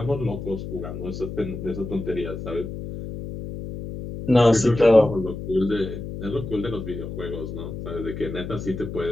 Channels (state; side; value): noise; left; hum, 8 dB below the sound